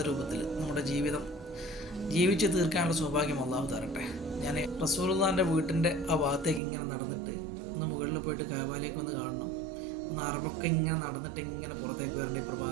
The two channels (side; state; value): left; drops out; at 6.6 s